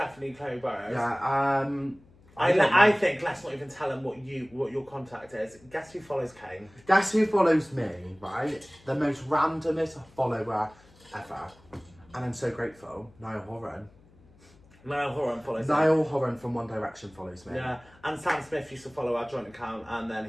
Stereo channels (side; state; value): left; noise; hum, 27 dB below the sound